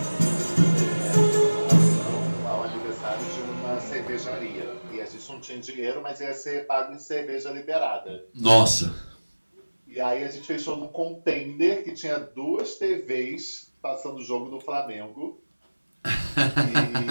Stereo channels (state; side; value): inverted; both; correlation -1.00